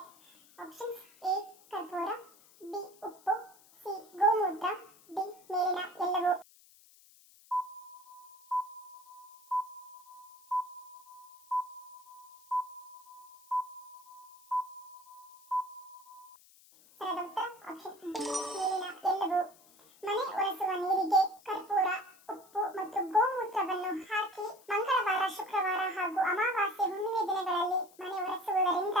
ಆಪ್ಷನ್ಸ್: ಎ ಕರ್ಪೂರ, ಬಿ ಉಪ್ಪು, ಸಿ ಗೋಮೂತ್ರ, ಡಿ ಮೇಲಿನ ಎಲ್ಲವೂ. ಸರಿಯಾದ ಉತ್ತರ ಆಪ್ಷನ್ ಡಿ ಮೇಲಿನ ಎಲ್ಲವೂ. ಮನೆ ಒರೆಸುವ ನೀರಿಗೆ ಕರ್ಪೂರ, ಉಪ್ಪು ಮತ್ತು ಗೋಮೂತ್ರವನ್ನು ಹಾಕಿ ಮಂಗಳವಾರ, ಶುಕ್ರವಾರ ಹಾಗೂ ಅಮಾವಾಸ್ಯೆ, ಹುಣ್ಣಿಮೆ ದಿನಗಳಲ್ಲಿ ಮನೆ ಒರೆಸುವುದರಿಂದ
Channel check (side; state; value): left; noise; hiss, 25 dB below the sound